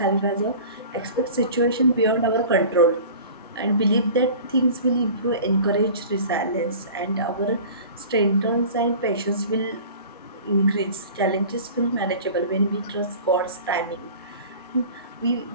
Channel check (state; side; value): inverted; both; correlation -0.41